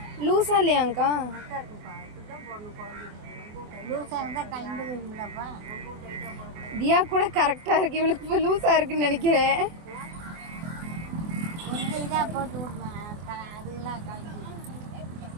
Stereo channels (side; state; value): left; late; 24 ms